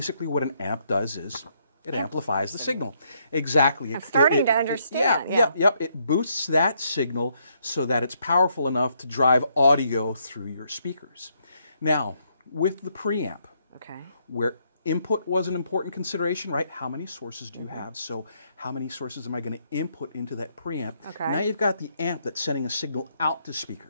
what an amp does is it amplifies the signal. Exactly. I'm starting to understand. It boosts that signal so that it's powerful enough to drive audio through your speakers. Now, with the preamp, where input was an important consideration, right? How many sources do you have? So how many sources am I going to input into that preamp? Now you've got the amp that's sending a signal out to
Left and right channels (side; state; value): both; inverted; correlation -0.73